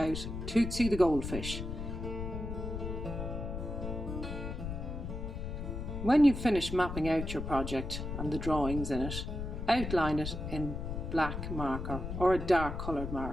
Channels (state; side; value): noise; left; rumble, 5 dB below the sound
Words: Tootsie the goldfish. When you've finished mapping out your project and the drawings in it, outline it in black marker or a dark coloured